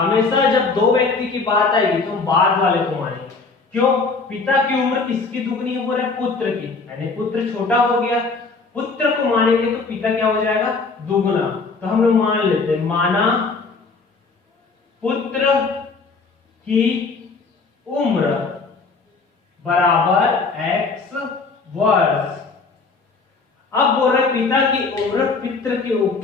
जब दो व्यक्ति की बात आएगी तो हम बाद वाले को मानेंगे। क्यों, पिता की उम्र किसकी दुगनी है, बोल रहे पुत्र की, यानी पुत्र छोटा हो गया, पुत्र को मानेंगे तो पिता क्या हो जाएगा, दुगना। तो हम लोग मान लेते हैं, माना पुत्र की उम्र बराबर x वर्ष। अब बोल रहे पिता की उम्र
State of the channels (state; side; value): quieter; right; 4.3 dB